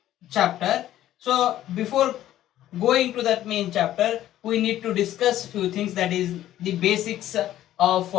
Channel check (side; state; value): right; quieter; 13.0 dB